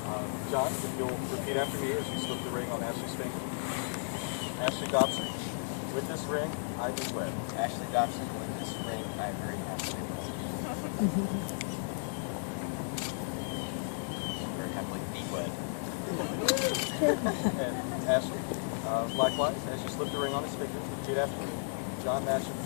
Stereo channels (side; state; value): right; silent; digital silence